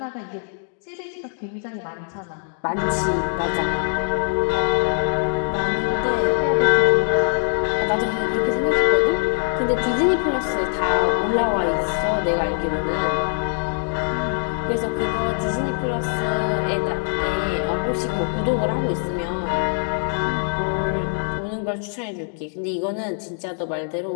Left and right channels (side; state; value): right; silent; digital silence